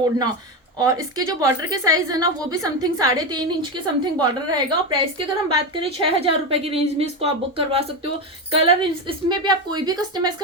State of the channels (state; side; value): normal; both; correlation 0.15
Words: और इसके जो बॉर्डर के साइज है ना वो भी समथिंग 3.5 इंच के समथिंग बॉर्डर रहेगा। और प्राइस की अगर हम बात करें 6000 रुपए की रेंज में इसको आप बुक करवा सकते हो। कलर इसमें भी आप कोई भी कस्टमाइज